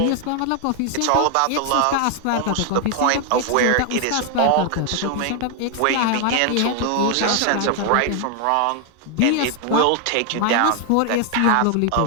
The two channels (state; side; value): different; both; correlation 0.00